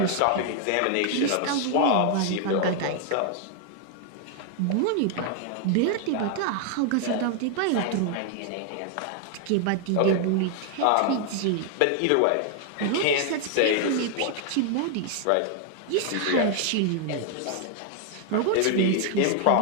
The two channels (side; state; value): both; different; correlation 0.00